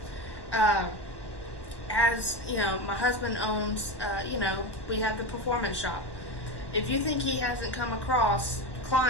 My husband owns. We have the performance shop. If you think he hasn't come across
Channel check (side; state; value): right; late; 1.1 ms